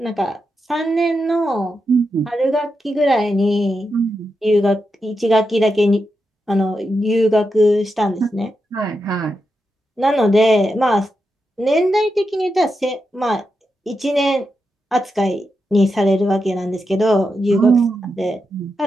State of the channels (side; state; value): both; normal; correlation 0.87